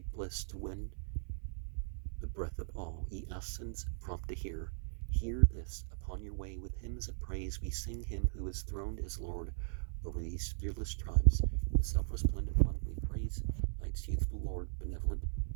bliss to win the breath of all, ye Asans prompt to hear. Hear this, upon your way with hymns of praise we sing him who is throned as Lord over these fearless tribes. The self-resplendent one we praise, night's youthful Lord, benevolent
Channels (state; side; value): silent; left; 53 dB below the other